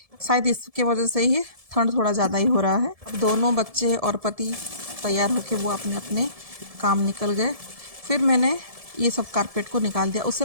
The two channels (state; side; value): late; left; 1.7 ms